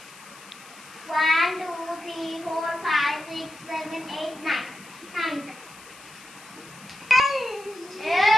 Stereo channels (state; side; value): noise; left; hiss, 20 dB below the sound